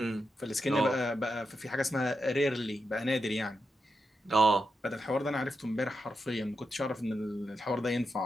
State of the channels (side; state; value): both; normal; correlation 0.86